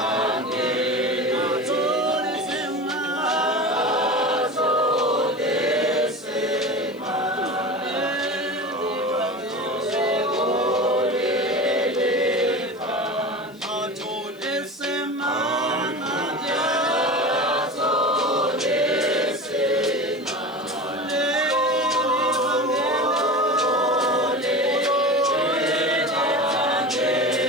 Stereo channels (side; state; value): left; noise; hiss, 28 dB below the sound